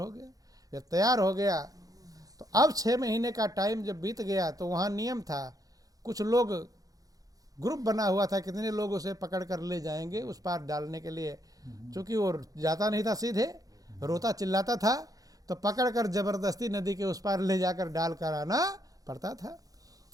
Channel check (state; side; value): late; left; 0.17 ms